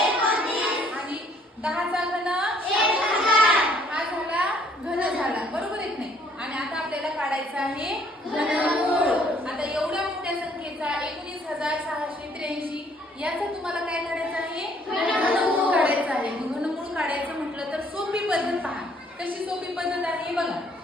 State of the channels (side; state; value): both; normal; correlation 0.63